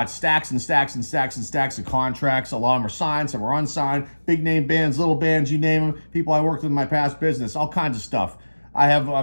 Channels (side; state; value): both; inverted; correlation -1.00